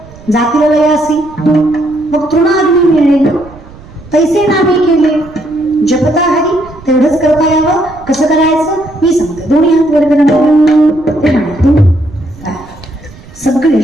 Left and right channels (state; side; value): noise; right; rumble, 20 dB below the sound